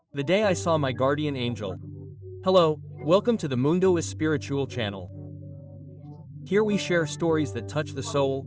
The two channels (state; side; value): identical; both; correlation 1.00